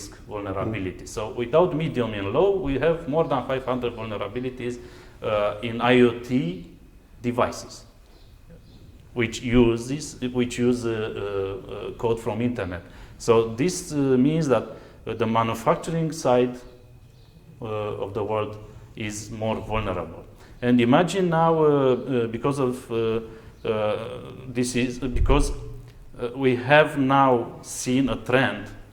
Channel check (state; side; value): identical; both; correlation 1.00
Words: vulnerabilities. So without medium and low, we have more than 500 vulnerabilities in IoT devices, which use code from internet. So this means that the manufacturing side of the world is more vulnerable. And imagine now, because we have now seen a trend